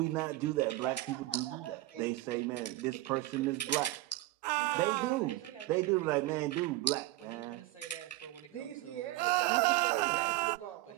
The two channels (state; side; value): quieter; left; 17.3 dB